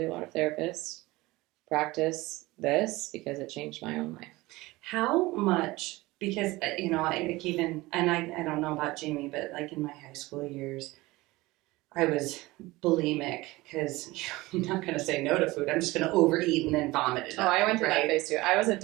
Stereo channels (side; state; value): left; quieter; 20.3 dB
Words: a lot of therapists, practice this because it changed my own life. How much? Because, you know, I don't know about Jaime, but like in my high school years, I was bulimic because I'm not going to say no to food. I'm just going to overeat and then vomit it up. I went through that phase too. I was a